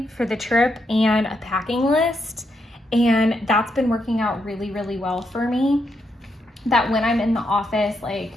for the trip and a packing list. And that's been working out really, really well for me. That when I'm in the office,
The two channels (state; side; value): normal; both; correlation 0.81